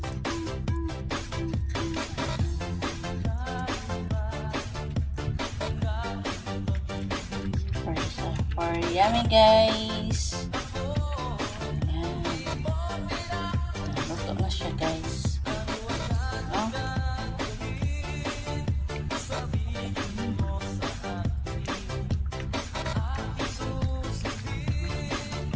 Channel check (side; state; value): both; identical; correlation 1.00